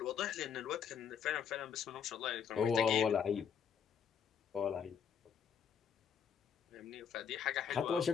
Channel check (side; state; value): right; quieter; 7.5 dB